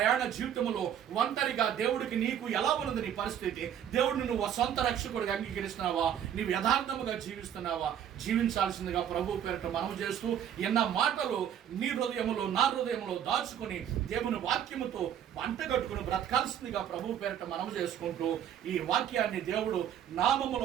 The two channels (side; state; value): left; quieter; 9.6 dB